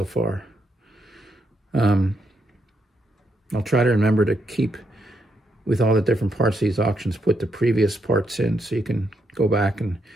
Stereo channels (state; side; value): normal; both; correlation 0.79